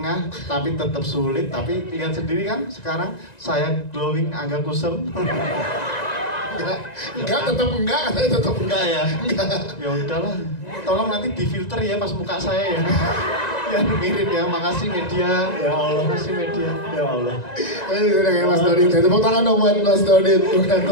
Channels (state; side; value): late; right; 1.9 ms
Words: tapi tetap sulit, tapi lihat sendiri kan sekarang saya glowing, Angga kusem. Enggak, tetap enggak Ya ya udahlah, tolong nanti difilter ya pas muka saya ya. Ya mirip ya, makasih media. Ya Allah. Makasih media. Ya Allah. Udah kayak Mas Dodit, tepuk tangan dong buat Mas Dodit.